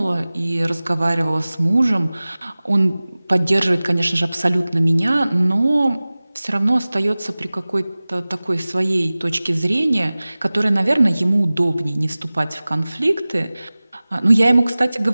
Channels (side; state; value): both; inverted; correlation -0.98